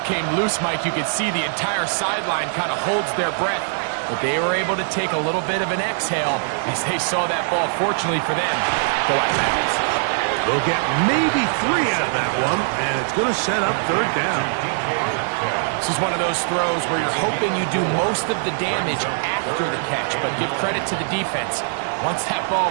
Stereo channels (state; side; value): silent; left; digital silence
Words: came loose, Mike, you could see the entire sideline kind of holds their breath. But they were able to take a little bit of an exhale as they saw that ball, fortunately for them, go out of bounds. They'll get maybe 3 out of that one, and it's going to set up 3rd down. This is one of those throws where you're hoping you do most of the damage after the catch, but give credit to the defense. Once that